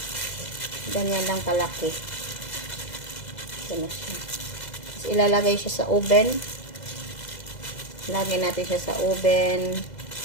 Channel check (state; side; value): late; right; 2.0 ms